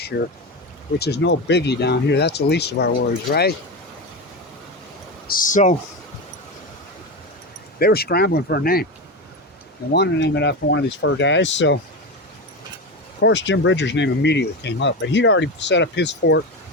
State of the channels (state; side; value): normal; both; correlation 0.18